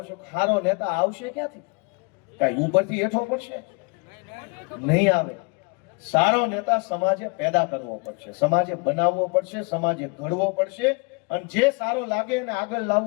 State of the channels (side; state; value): right; quieter; 32.0 dB